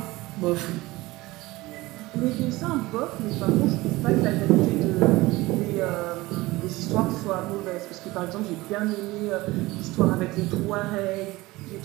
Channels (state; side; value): quieter; left; 20.0 dB